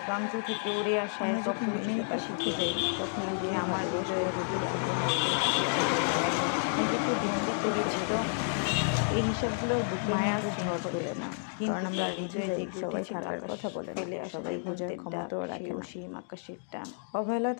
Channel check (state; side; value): silent; right; digital silence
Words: প্রান্ত থেকে উড়ে আসা এক অপরিচিততা শিখে যাই, তখন গিয়ে আমার হৃদয়ের নিজেকে বন্দি করেছিল। এই হিসাবগুলোর বুকে মায়ার ঝড় তোলে না, কারণ আমরা হৃদয়ে যে সবাই থাকার কথা বলে ফেলে সবাই বোঝার ক্ষমতাও রাখে না। সেই আকাশের টান অবহেলা